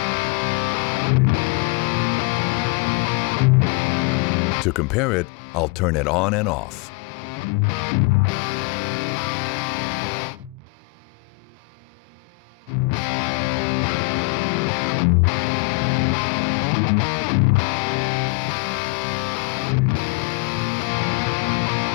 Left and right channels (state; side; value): quieter; right; 26.5 dB